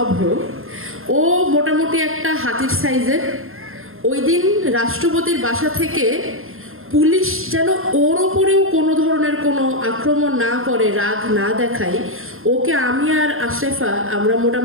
অভ্র। ও মোটামুটি একটা হাতির সাইজের। ওই দিন রাষ্ট্রপতির বাসা থেকে পুলিশ যেন ওর ওপরেও কোনো ধরনের কোনো আক্রমণ না করে, রাগ না দেখায়, ওকে আমি আর আশরাফা আমরা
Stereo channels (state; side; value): late; left; 0.61 ms